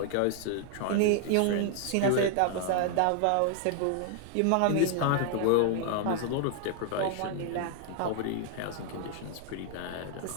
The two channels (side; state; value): both; different; correlation 0.00